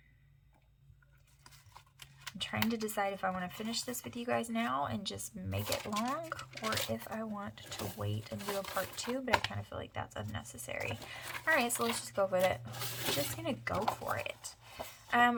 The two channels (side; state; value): both; identical; correlation 1.00